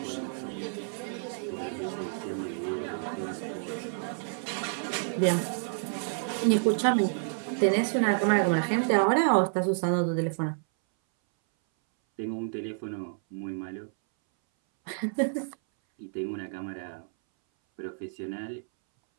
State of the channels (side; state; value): left; silent; 58 dB below the other